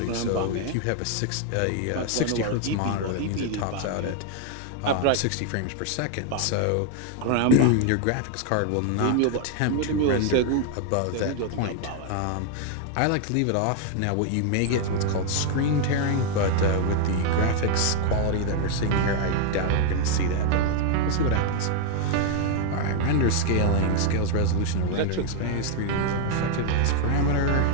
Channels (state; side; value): different; both; correlation 0.00